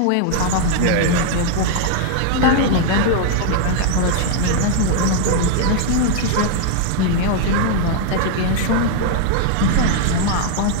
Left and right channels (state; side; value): different; both; correlation 0.00